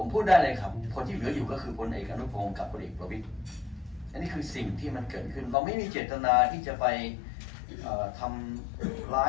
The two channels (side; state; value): right; drops out; at 5.6 s